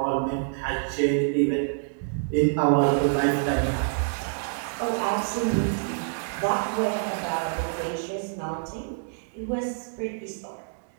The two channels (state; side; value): silent; left; digital silence